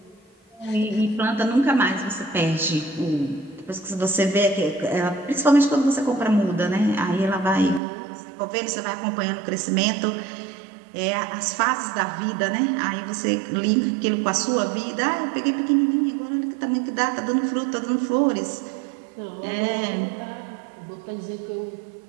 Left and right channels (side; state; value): left; drops out; at 7.8 s